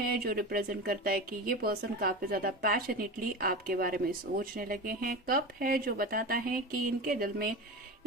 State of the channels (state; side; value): normal; both; correlation 0.27